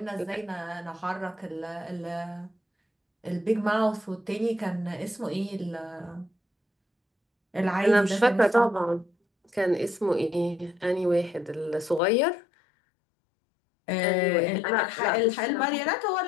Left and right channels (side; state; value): right; drops out; at 12.0 s